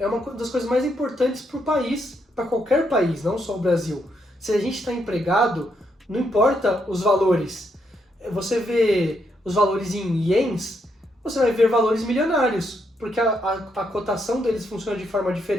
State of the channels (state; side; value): normal; both; correlation 0.77